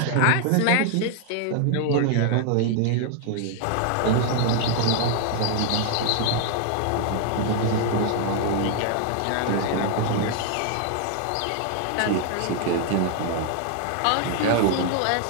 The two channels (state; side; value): different; both; correlation 0.00